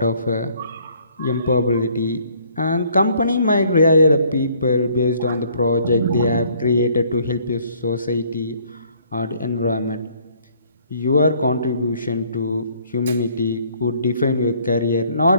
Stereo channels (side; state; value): both; inverted; correlation -0.61